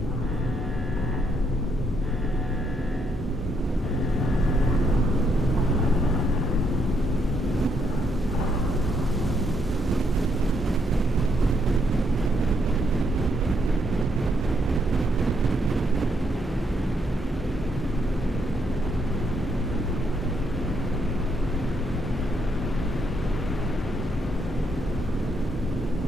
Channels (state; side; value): normal; both; correlation 0.75